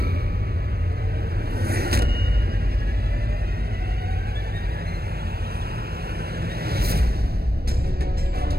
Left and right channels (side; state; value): left; late; 0.46 ms